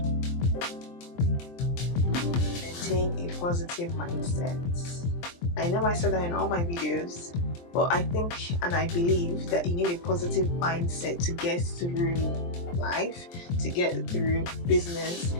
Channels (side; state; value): right; late; 23 ms